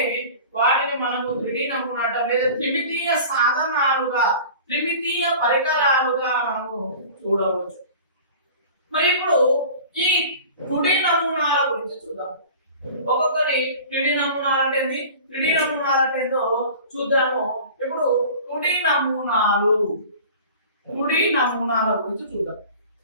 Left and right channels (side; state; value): both; inverted; correlation -0.40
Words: వాటిని మనము త్రిడి నమూనా అంటాం. లేదా త్రిమితీయ సాధనాలుగా, త్రిమితీయ పరికరాలుగా మనము చూడవచ్చు. మరి ఇప్పుడు ఈ తుడి నమూనాల గురించి చూద్దాం. ఒక్కొక్కరి త్రిడి నమూనాలు అంటే ఏంది, త్రిడి నమూనాలు అంటే ఏందో చూద్దాము. ఇప్పుడు తుడి నమూనాల గురించి చూద్దాం.